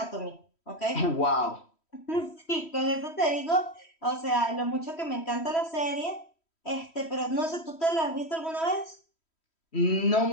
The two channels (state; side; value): late; right; 3.1 ms